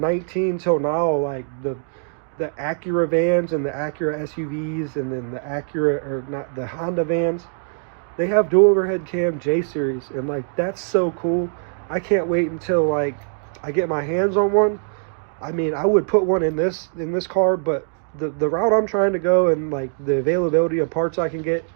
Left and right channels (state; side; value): silent; left; digital silence